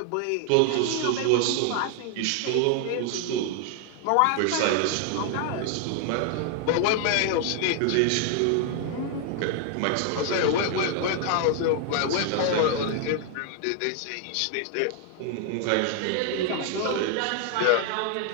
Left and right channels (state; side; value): different; both; correlation 0.00